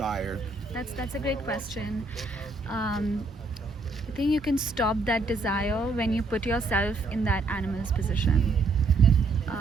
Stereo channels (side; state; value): left; quieter; 3.5 dB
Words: That's a great question. I think you can stop that desire when you put yourself in that animal's position.